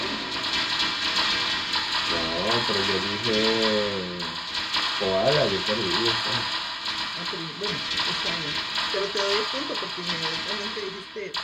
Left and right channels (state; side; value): identical; both; correlation 1.00